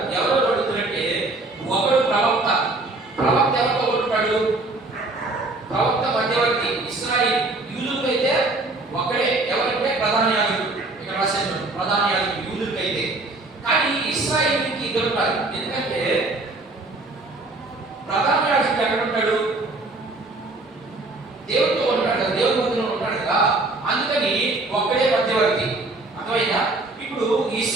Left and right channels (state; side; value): quieter; left; 3.1 dB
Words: ఎవరు అడుగుతారంటే ఒకడు ప్రవక్త ఎవరితో ఉంటాడు? ప్రవక్త మధ్యవర్తి. ఇశ్రాయేలు యూదులకైతే ఒకడే, ఎవరంటే ప్రధాన యాజకుడు. ఇక్కడ రాశాను ప్రధాన యాజకుడు యూదులకైతే. కానీ ఇశ్రాయేలుకి ఇద్దరుంటారు. ఎందుకంటే ప్రధాన యాజకుడు ఎక్కడ ఉంటాడు? దేవుడితో ఉంటాడు కదా, దేవుడి మందిరంలో ఉంటాడు కదా, అందుకని ఒక్కడే మధ్యవర్తి. అర్థమైందా? ఇప్పుడు